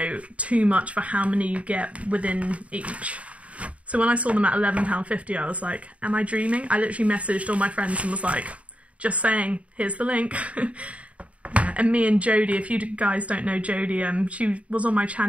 too much for how many you get within each. So when I saw them at £11.50, I was like, am I dreaming? I literally messaged all my friends and was like, just saying, here's the link. And me and Jodie, if you guys don't know Jodie, she was on my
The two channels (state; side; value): late; left; 0.065 ms